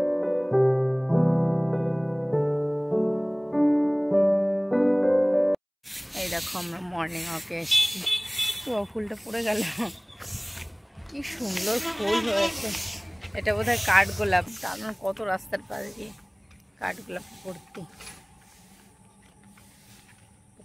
এই দেখো আমরা মর্নিং ওয়াকে এসেছি, তো ফুলটা পড়ে গেল, কি সুন্দর ফুল হয়েছে। এটা বোধহয় কাঠগোলাপ, তার কত রাস্তার পাশ দিয়ে কাঠগোলাপ ভর্তি।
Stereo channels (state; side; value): identical; both; correlation 1.00